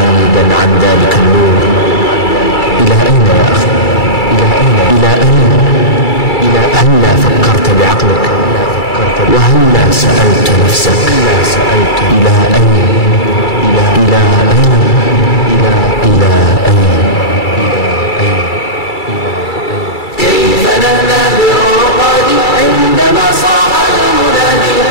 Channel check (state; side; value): late; right; 2.3 ms